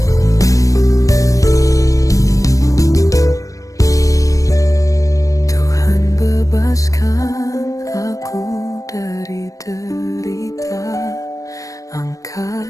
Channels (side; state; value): right; late; 0.16 ms